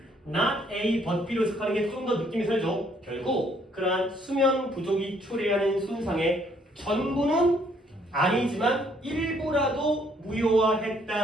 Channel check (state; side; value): normal; both; correlation 0.66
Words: not A but B로 해석하는 게 좀 더 느낌이 살죠. 결국 그러한 수면 부족이 초래하는 손상의 전부는 아니지만 일부라도